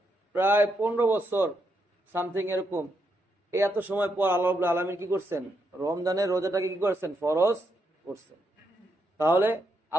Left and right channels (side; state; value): both; normal; correlation 0.80